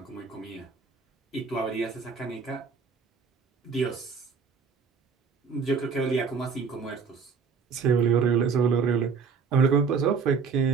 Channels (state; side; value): quieter; left; 5.5 dB